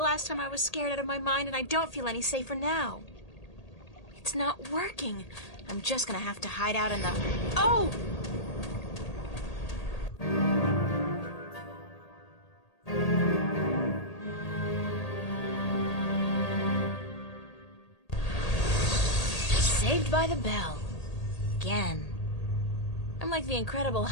last time I was scared out of my mind, and I don't feel any safer now. It's not working. I'm just gonna have to hide out in the... Oh! Saved by the bell. Again. I'm like the Incredible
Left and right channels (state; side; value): late; right; 1.8 ms